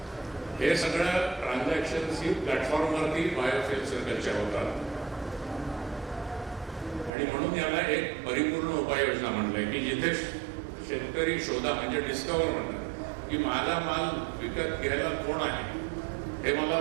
हे सगळं ट्रान्झॅक्शन्स ही प्लॅटफॉर्मवरती बायोफ्युएल सर्कलच्या होतात. आणि म्हणून याला एक परिपूर्ण उपाययोजना म्हटलंय की जिथे शेतकरी शोधा, म्हणजे डिस्कवर म्हणतात की माझा माल विकत घ्यायला कोण आहे हे मला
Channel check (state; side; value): drops out; left; at 7.1 s